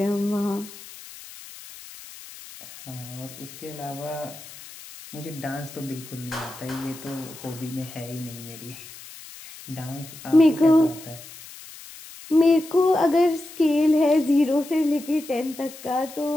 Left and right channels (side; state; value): left; noise; hiss, 16 dB below the sound